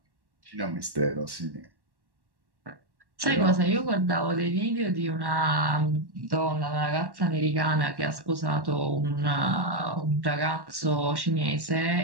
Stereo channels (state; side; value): late; left; 1.1 ms